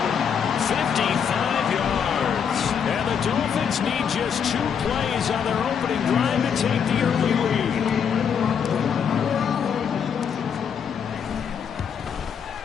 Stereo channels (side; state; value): right; quieter; 7.4 dB